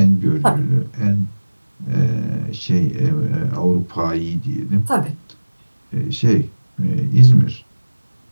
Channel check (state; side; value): inverted; both; correlation -1.00